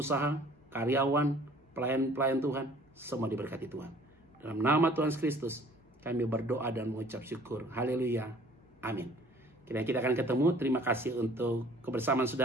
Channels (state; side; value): normal; both; correlation 0.53